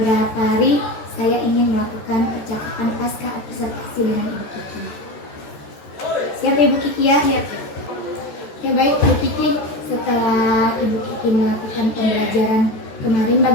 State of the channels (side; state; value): right; late; 14 ms